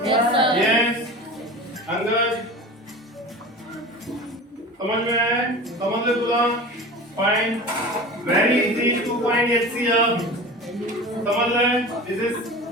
Yes, sir. Yes. Angad समझ में आया है? समझ ले तुला? Fine. Very easy to find HCF. समझ ले? This is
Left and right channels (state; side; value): normal; both; correlation 0.34